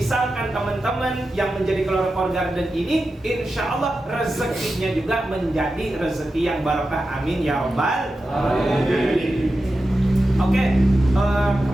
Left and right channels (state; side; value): normal; both; correlation 0.91